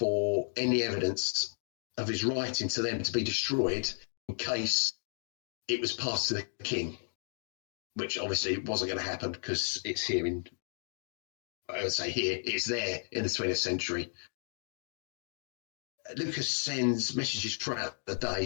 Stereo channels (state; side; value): silent; right; 55 dB below the other